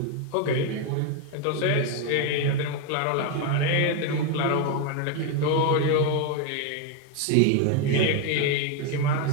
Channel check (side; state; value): both; different; correlation 0.02